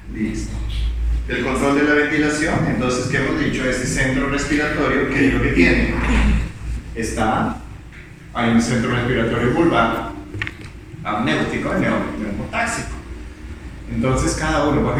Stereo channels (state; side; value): identical; both; correlation 1.00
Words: listo. El control de la ventilación. Entonces, ¿qué hemos dicho? Este centro respiratorio, ¿qué es lo que tiene? Hay un centro respiratorio vulvar, amnéutico y neumotáxico. Entonces cada uno, por